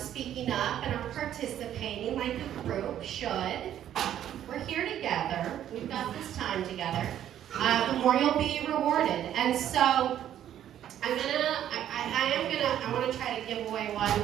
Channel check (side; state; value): left; quieter; 10.9 dB